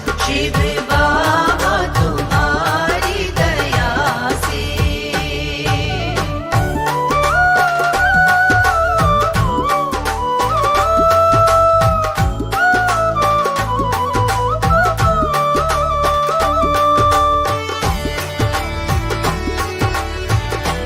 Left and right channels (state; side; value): identical; both; correlation 1.00